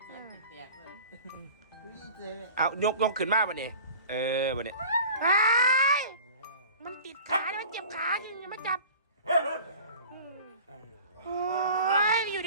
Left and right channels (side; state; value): both; inverted; correlation -0.42